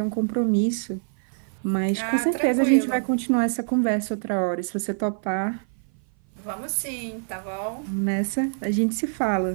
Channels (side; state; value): left; silent; 57 dB below the other